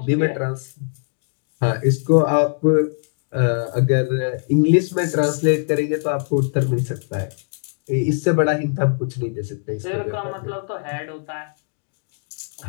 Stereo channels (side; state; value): right; silent; digital silence